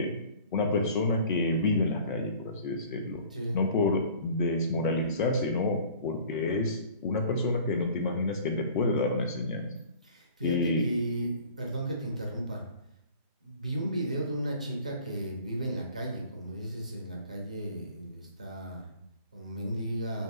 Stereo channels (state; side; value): inverted; both; correlation -0.48